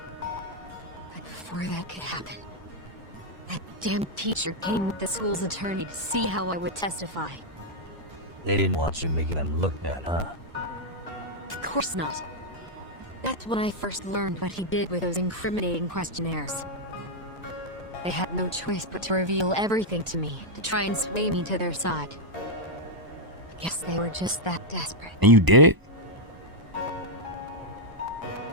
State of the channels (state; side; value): late; left; 1.0 ms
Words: before that could happen, that damn teacher came with the school's attorney to see how I would testify. They didn't want you making them look bad, huh? Of course not. That's when I first learned what he did with those incriminating questionnaires. They had no choice but to reveal everything to me, to try and sway me to their side. I guess they were just that desperate. And you did it?